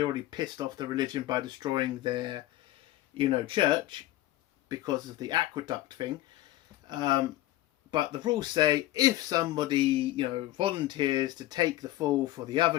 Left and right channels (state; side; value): quieter; right; 15.7 dB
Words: already pissed off the religion by destroying their, church because of the aqueduct thing. But the rules say if somebody, volunteers to take the fall for the